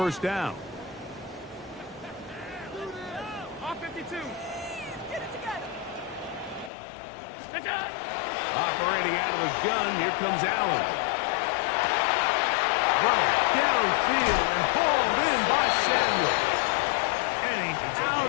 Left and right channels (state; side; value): drops out; right; at 6.7 s